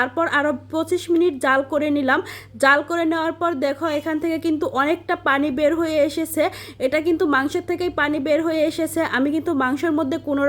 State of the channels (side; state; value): both; identical; correlation 1.00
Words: আরও 25 মিনিট জাল করে নিলাম। জাল করে নেওয়ার পর দেখো এখান থেকে কিন্তু অনেকটা পানি বের হয়ে এসেছে। এটা কিন্তু মাংসের থেকেই পানি বের হয়ে এসেছে। আমি কিন্তু মাংসের মধ্যে কোনো